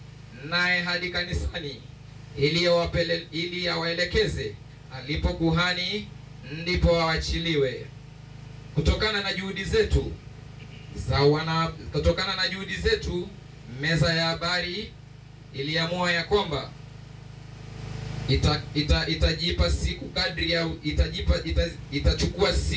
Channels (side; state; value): both; identical; correlation 1.00